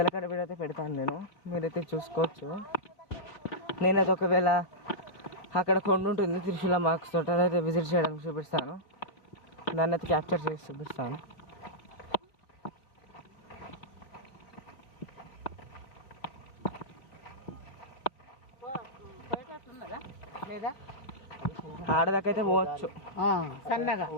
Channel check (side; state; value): right; late; 3.7 ms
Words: కాడ వీడైతే పెడతాను నేను, మీరైతే చూసుకోవచ్చు. నేనైతే ఒకవేళ అక్కడ కొండ ఉంటుంది త్రిశూల మార్క్స్ తోట, అయితే విజిట్ చేయడానికి చూపిస్తాను. దాన్ని అయితే క్యాప్చర్ చేసి చూపిస్తాను. ఆడదాకైతే పోవచ్చు, సన్నగా